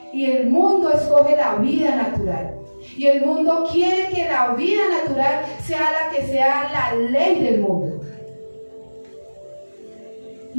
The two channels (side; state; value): both; inverted; correlation -1.00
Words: Y el mundo escoge la vida natural. Y el mundo quiere que la vida natural sea la que sea la ley del mundo.